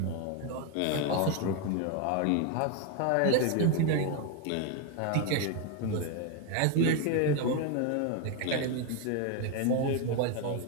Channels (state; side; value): different; both; correlation 0.02